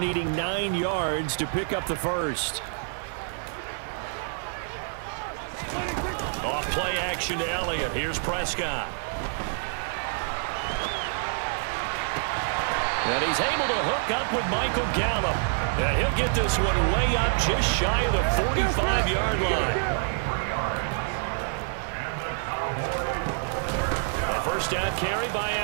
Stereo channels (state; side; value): silent; left; digital silence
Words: 9 yards to pick up the first. Off play action to Elliott. Here's Prescott. And he's able to hook up with Michael Gallup. And he'll get this one way up just shy of the 45-yard line. A first down carry by